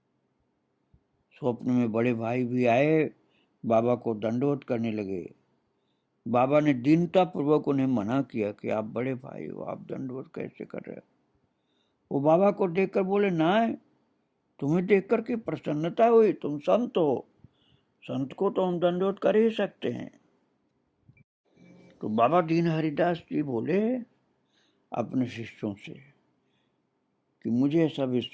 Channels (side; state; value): both; identical; correlation 1.00